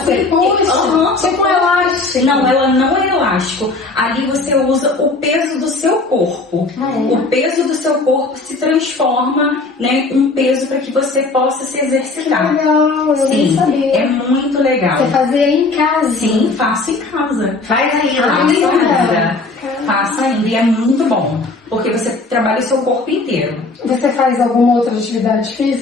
puxa, tipo um elástico. Não, ela não é elástico. Ali você usa o peso do seu corpo. O peso do seu corpo se transforma, né, um peso para que você possa se exercitar. Legal, eu nem sabia. É muito legal. Você fazia em casa? Sim, faço em casa. Faz ainda. Faço em casa. Faço ainda e é muito bom. Porque você trabalha o seu corpo inteiro. Você faz alguma outra atividade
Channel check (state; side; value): quieter; right; 3.5 dB